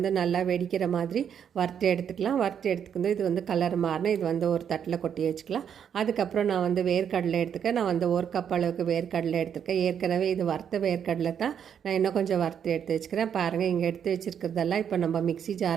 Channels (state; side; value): quieter; left; 8.3 dB